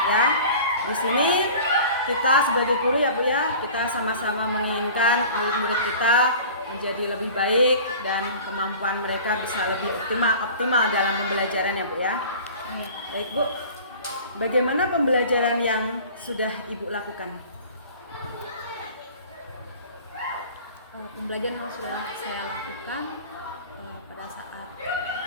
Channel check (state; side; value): inverted; both; correlation -0.42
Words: ya. Di sini kita sebagai guru ya Bu ya, kita sama-sama menginginkan murid-murid kita menjadi lebih baik dan kemampuan mereka bisa lebih optimal dalam pembelajaran ya Bu ya. Baik Bu, bagaimana pembelajaran yang sudah Ibu lakukan? Pembelajaran yang sudah saya lakukan pada saat